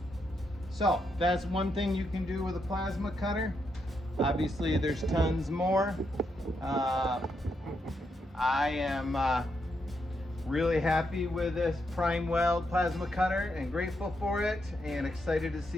So that's one thing you can do with a plasma cutter. Obviously there's tons more. I am really happy with this PrimeWeld Plasma Cutter and grateful for it and excited to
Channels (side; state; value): both; normal; correlation 0.80